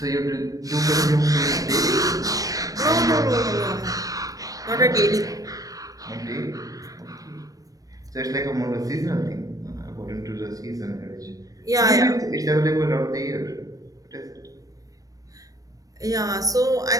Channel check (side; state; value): left; late; 0.17 ms